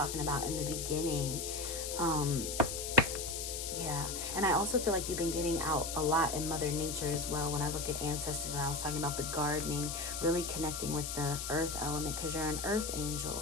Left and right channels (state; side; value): noise; left; hiss, 4 dB below the sound